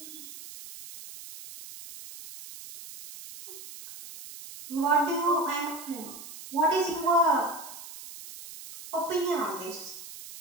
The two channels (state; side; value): noise; right; hiss, 14 dB below the sound